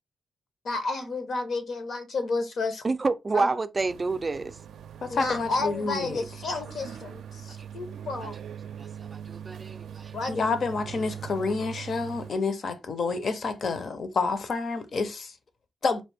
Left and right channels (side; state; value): both; normal; correlation 0.83